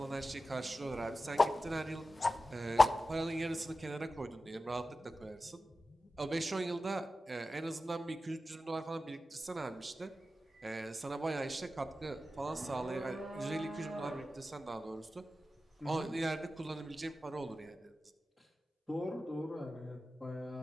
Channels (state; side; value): normal; both; correlation 0.93